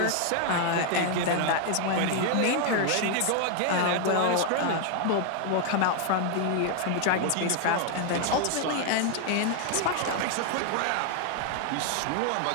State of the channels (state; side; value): different; both; correlation 0.00